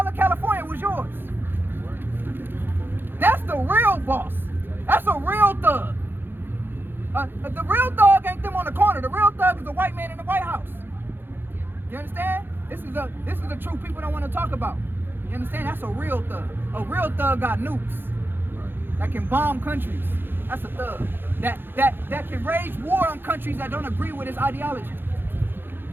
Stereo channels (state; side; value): late; left; 0.10 ms